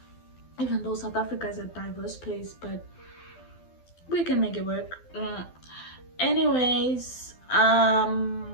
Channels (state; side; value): late; right; 12 ms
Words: Even though South Africa is a diverse place, but we can make it work. Anyways,